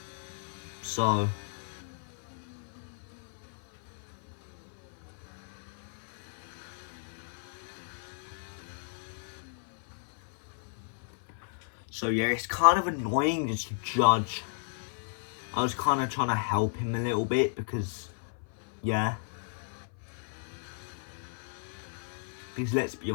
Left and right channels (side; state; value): right; silent; 55 dB below the other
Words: So, yeah, it's kind of annoying just to judge. I was kind of trying to help him a little bit because, yeah. Because let's be